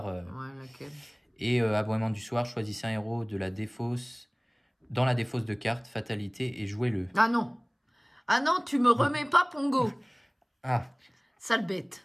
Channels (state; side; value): identical; both; correlation 1.00